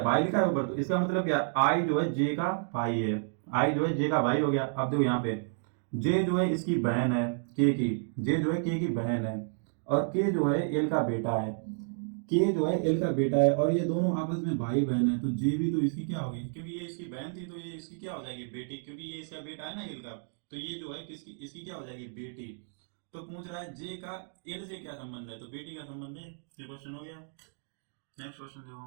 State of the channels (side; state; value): left; silent; digital silence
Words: भाई लिखा है ऊपर, तो इसका मतलब क्या, आई जो है जे का भाई है, आई जो है जे का भाई हो गया। अब देखो यहाँ पे जे जो है इसकी बहन है के की, जे जो है के की बहन है, और के जो है एल का बेटा है, के जो है एल का बेटा है, और ये दोनों आपस में भाई बहन है, तो जे भी तो इसकी क्या होगी, क्योंकि ये इसकी बहन थी तो ये इसकी क्या हो जाएगी, बेटी, क्योंकि ये इसका बेटा है ना एल का, तो ये जो है किसकी, इसकी क्या हो जाएगी, बेटी। तो पूछ रहा है जे का एल से क्या संबंध है, तो बेटी का संबंध है। ये क्वेश्चन हो गया। नेक्स्ट क्वेश्चन देखो,